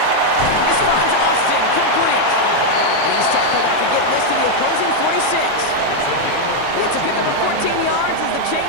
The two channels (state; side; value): different; both; correlation 0.00